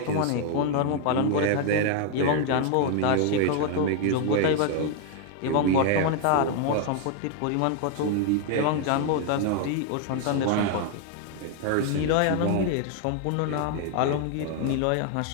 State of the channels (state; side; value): different; both; correlation 0.00